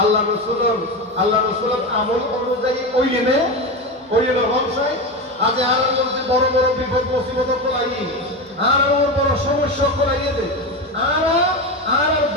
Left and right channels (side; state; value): both; normal; correlation 0.20